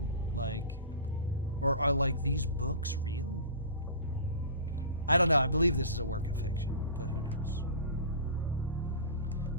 Or are these books real? I don't know. I believe this is a work of fiction, but who knows?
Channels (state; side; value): inverted; both; correlation -0.35